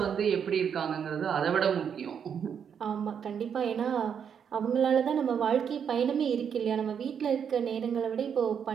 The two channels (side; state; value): left; quieter; 7.6 dB